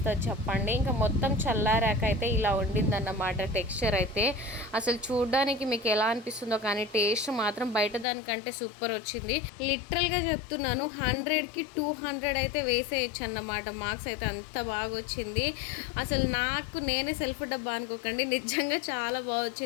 చెప్పండి. ఇంకా మొత్తం చల్లారాక అయితే ఇలా ఉండిందన్నమాట టెక్స్చర్ అయితే. అసలు చూడడానికి మీకు ఎలా అనిపిస్తుందో కానీ టేస్ట్ మాత్రం బయట దానికంటే సూపర్ వచ్చింది. లిటరల్గా చెప్తున్నాను, 100కి 200 అయితే వేసేయచ్చు అన్నమాట. మార్క్స్ అయితే అంత బాగా వచ్చింది. అసలు నాకు నేనే సెల్ఫ్ డబ్బా అనుకోకండి, నిజంగా చాలా బాగా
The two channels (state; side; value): drops out; right; at 8.1 s